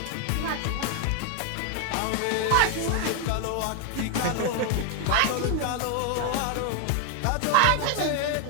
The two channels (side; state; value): both; different; correlation 0.00